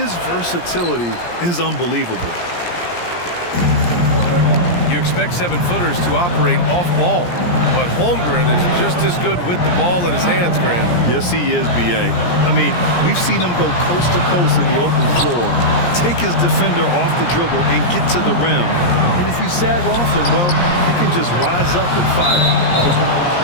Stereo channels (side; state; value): right; late; 17 ms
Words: versatility is unbelievable. You expect 7-footers to operate off ball, but Holmgren is just as good with the ball in his hands, Grant. Yes, he is, B.A. I mean, we've seen him go coast to coast in the open floor, take his defender off the dribble and get to the rim. And if you sag off him, well, he can just rise up and fire.